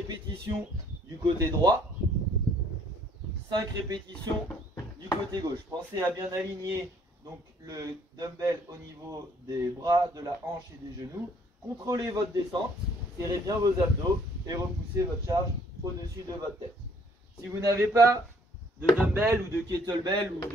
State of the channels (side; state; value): both; normal; correlation 0.62